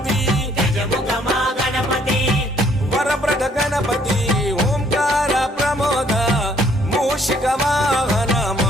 వరప్రద గణపతి ఓంకార ప్రమోద మూషిక వాహన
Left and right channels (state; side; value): normal; both; correlation 0.64